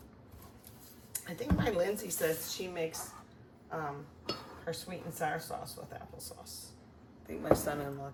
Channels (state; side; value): identical; both; correlation 1.00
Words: I think my Lindsay says she makes her sweet and sour sauce with applesauce. I think my son-in-law